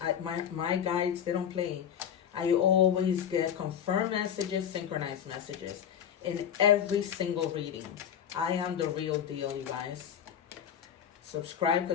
My guides, they don't play. I always get confirmed messages, synchronized messages in every single reading. I am the real deal, you guys. Subscribe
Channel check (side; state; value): right; quieter; 8.9 dB